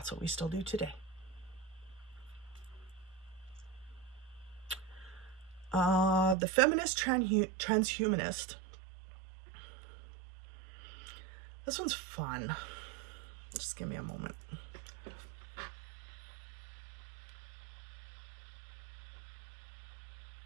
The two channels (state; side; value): drops out; left; at 6.4 s